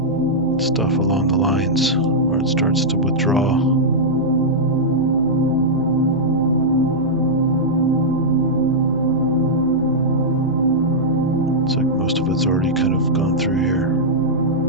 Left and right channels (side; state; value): left; noise; hum, 16 dB below the sound